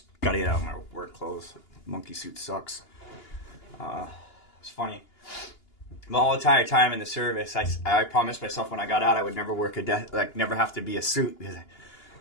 got to get out of my work clothes. Monkey suit sucks. It's funny. My whole entire time in the service, I promised myself when I got out I would never work never have to be a suit, because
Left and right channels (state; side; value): late; right; 2.9 ms